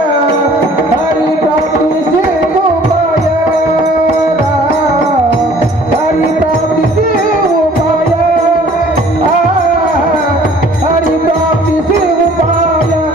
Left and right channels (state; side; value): normal; both; correlation 0.53